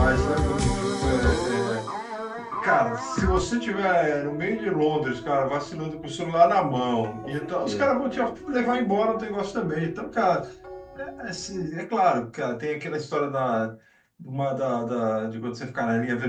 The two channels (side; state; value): both; identical; correlation 1.00